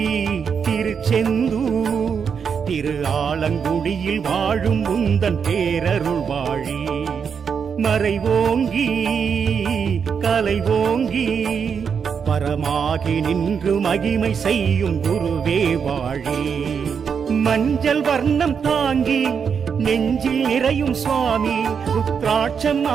திருச்செந்தூர் திரு ஆலங்குடியில் வாழும் உந்தன் பேரருள் வாழி மறைவோங்கி கலைவோங்கி பரமாகி நின்று மகிமை செய்யும் குருவே வாழி மஞ்சள் வர்ணம் தாங்கி நெஞ்சில் நிறையும் சுவாமி ருத்ராட்சம்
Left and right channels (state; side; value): quieter; left; 6.6 dB